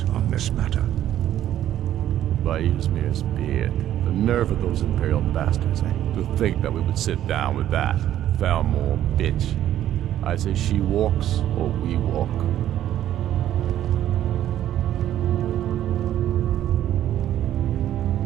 on this matter. By Ysmir's beard, the nerve of those Imperial bastards, eh? To think that we would sit down with that Thalmor bitch. I say she walks, or we walk.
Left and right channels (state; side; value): quieter; left; 11.9 dB